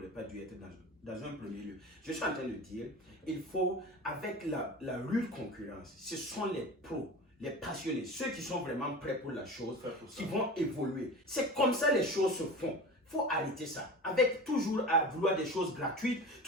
pas dû être dans un premier lieu. Je suis en train de dire, il faut, avec la rude concurrence, ce sont les pros, les passionnés, ceux qui sont vraiment prêts pour la chose, qui vont évoluer. C'est comme ça les choses se font. Il faut arrêter ça. Avec toujours à vouloir des choses gratuites,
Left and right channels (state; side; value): normal; both; correlation 0.33